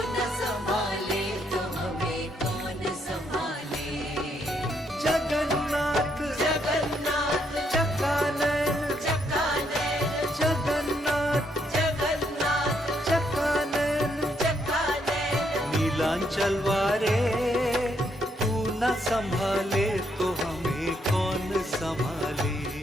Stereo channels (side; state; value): both; normal; correlation 0.74